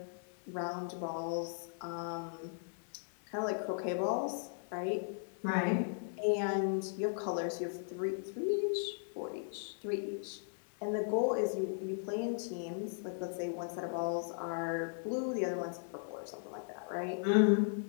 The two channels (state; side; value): silent; right; digital silence